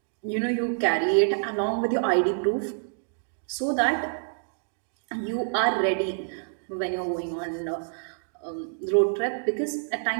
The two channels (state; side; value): silent; left; digital silence